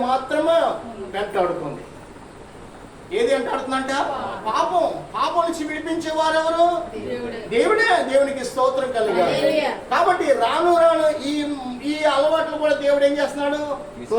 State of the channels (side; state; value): both; identical; correlation 1.00